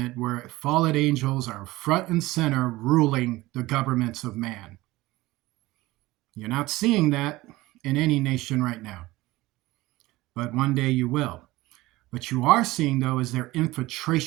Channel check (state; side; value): quieter; left; 19.0 dB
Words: where fallen angels are front and center ruling the governments of man. You're not seeing that in any nation right now. But one day you will. What you are seeing, though, is their